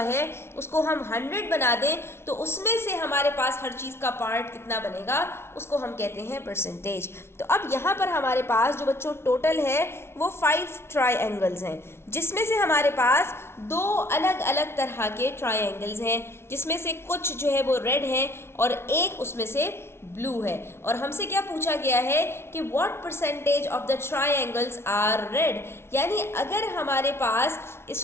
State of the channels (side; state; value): right; late; 0.12 ms